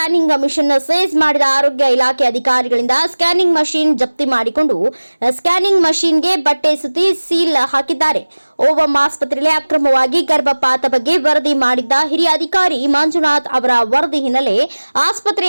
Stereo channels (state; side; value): inverted; both; correlation -1.00